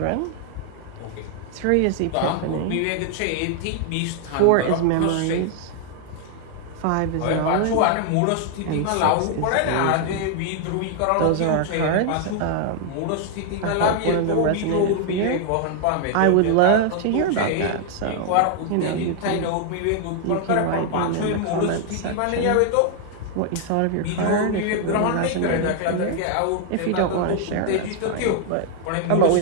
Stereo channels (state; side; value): different; both; correlation 0.00